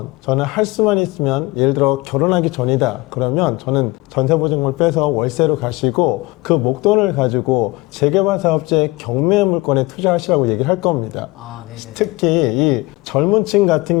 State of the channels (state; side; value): quieter; right; 22.0 dB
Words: 저는 할 수만 있으면, 예를 들어 결혼하기 전이다 그러면 저는 전세보증금을 빼서 월세로 가시고 그 목돈을 가지고 재개발 사업자의 경매 물건에 투자하시라고 얘기를 할 겁니다. 특히 이 젊은 층 같은